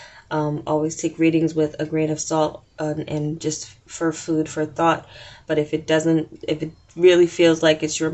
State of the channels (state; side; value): identical; both; correlation 1.00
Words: Always take readings with a grain of salt and just for food for thought. But if it really feels like it's your